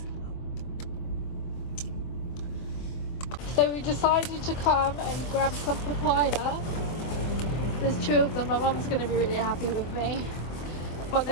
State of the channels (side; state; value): right; late; 24 ms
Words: go. So we decided to come and grab some papaya. There's 2 of them. My mum's gonna be really happy with me, but